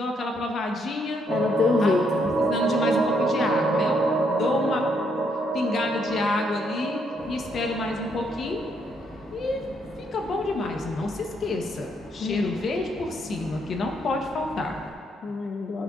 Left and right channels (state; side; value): normal; both; correlation 0.73